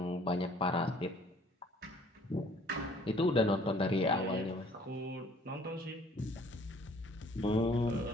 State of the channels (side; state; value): both; normal; correlation 0.56